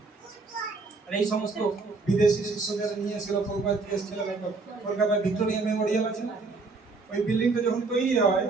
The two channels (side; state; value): left; quieter; 3.9 dB